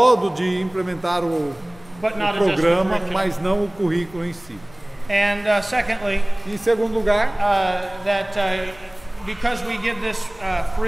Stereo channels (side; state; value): left; noise; rumble, 25 dB below the sound